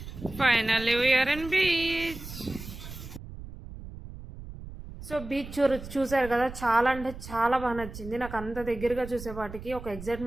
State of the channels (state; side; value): noise; right; rumble, 12 dB below the sound